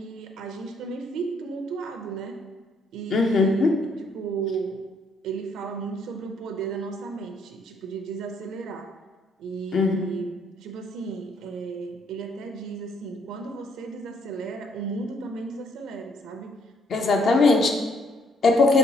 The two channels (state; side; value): normal; both; correlation 0.68